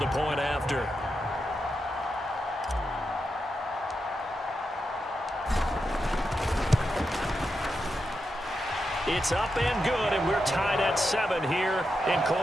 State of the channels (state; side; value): normal; both; correlation 0.87